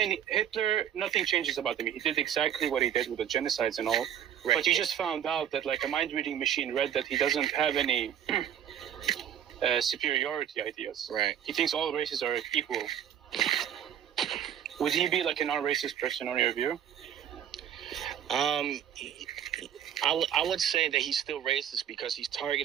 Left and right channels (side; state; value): left; quieter; 9.8 dB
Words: Hitler, nothing changes about him. He did exactly what he did with the genocides and all. Right. But you just found out that like a mind-reading machine read that he doesn't have any superiority ideas. Right. He thinks all races are equal. Would he be like a non-racist person on your view? I would say that he's still racist because he's